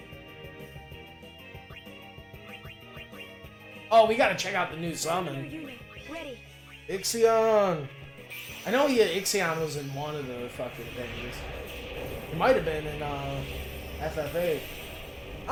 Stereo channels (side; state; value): both; identical; correlation 1.00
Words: Oh, we gotta check out the new summon. Ready. Ixion! I know Ixion was in one of the fucking things. It might have been in FF8.